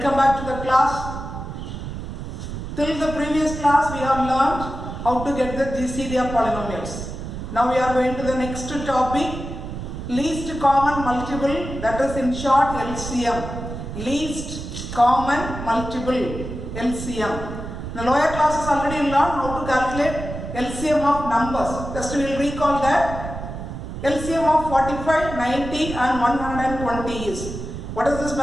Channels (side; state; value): right; noise; rumble, 8 dB below the sound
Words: back to the class. Till the previous class we have learned how to get the GCD of polynomials. Now we are going to the next topic, least common multiple, that is in short LCM. Least common multiple, LCM. In the lower classes already learned how to calculate LCM of numbers. Just we will recall that LCM of 45, 90 and 120 is. What is this